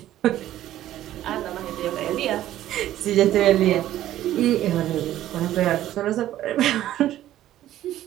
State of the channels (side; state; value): left; quieter; 13.2 dB